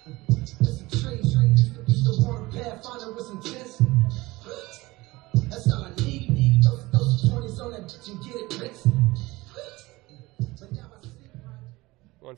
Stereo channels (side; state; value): left; quieter; 20.6 dB